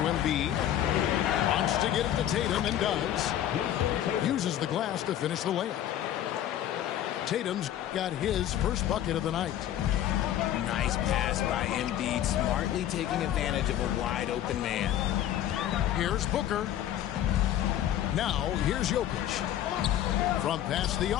Embiid. Wants to get it to Tatum and does. Uses the glass to finish the layup. Tatum's got his first bucket of the night. Nice pass by Embiid, smartly taking advantage of a wide open man. Here's Booker. Now here's Jokic. From past the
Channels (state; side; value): quieter; right; 11.6 dB